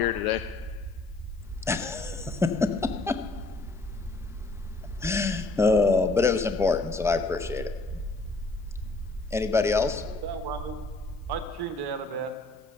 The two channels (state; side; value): quieter; right; 3.1 dB